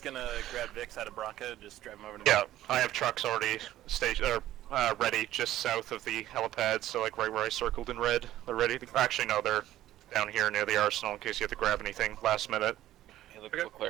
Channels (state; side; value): quieter; left; 13.8 dB